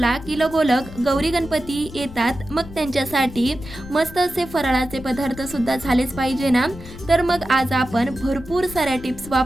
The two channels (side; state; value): left; noise; rumble, 15 dB below the sound